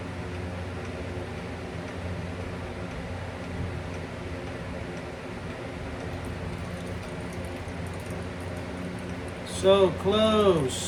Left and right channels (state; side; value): identical; both; correlation 1.00